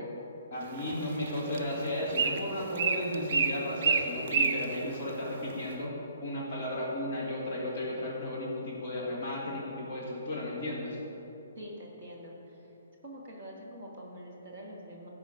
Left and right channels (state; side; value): inverted; both; correlation -0.59